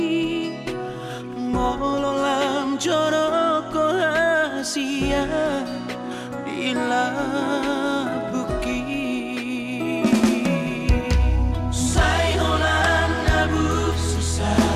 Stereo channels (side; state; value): both; identical; correlation 1.00